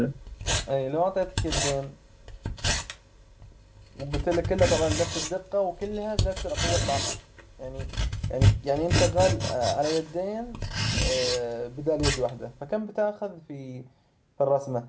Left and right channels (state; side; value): identical; both; correlation 1.00